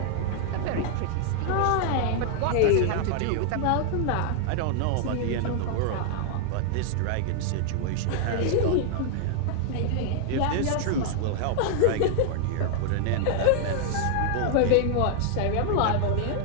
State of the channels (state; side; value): different; both; correlation 0.00